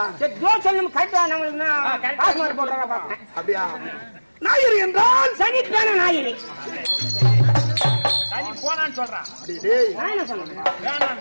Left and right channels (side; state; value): both; inverted; correlation -1.00